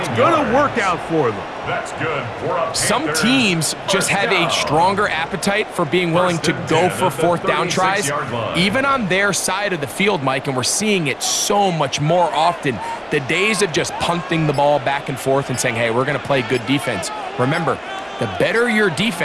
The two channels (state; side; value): identical; both; correlation 1.00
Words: going to work out for them. That's good. Some teams just have a stronger appetite for being willing to go for 4th down tries, even on their side of the field, Mike, and we're seeing it so much more often. The days of just punting the ball back and forth and saying, hey, we're going to play good defense. Remember, the better your